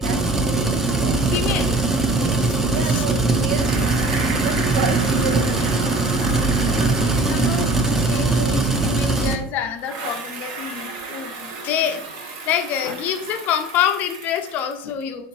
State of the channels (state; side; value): normal; both; correlation 0.43